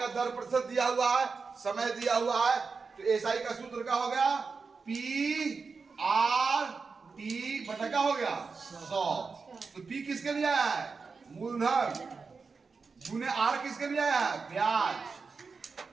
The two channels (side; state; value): left; quieter; 4.8 dB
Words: दर प्रतिशत दिया हुआ है, समय दिया हुआ है, तो एसआई का सूत्र क्या हो गया, PR टी बटा क्या हो गया 100। तो पी किसके लिए आया है? मूलधन। गुने आर किसके लिए आया है? ब्याज।